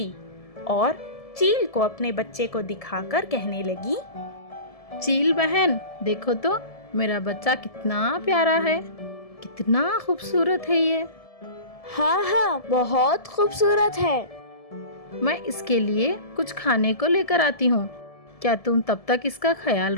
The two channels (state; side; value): late; right; 1.7 ms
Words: और चील को अपने बच्चे को दिखाकर कहने लगी, चील बहन, देखो तो मेरा बच्चा कितना प्यारा है, कितना खूबसूरत है ये। हाँ, बहुत खूबसूरत है। मैं इसके लिए कुछ खाने को लेकर आती हूँ। क्या तुम तब तक इसका ख्याल